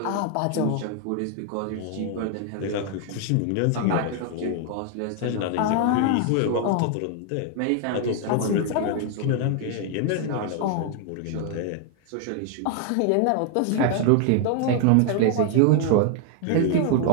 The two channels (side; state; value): both; different; correlation 0.00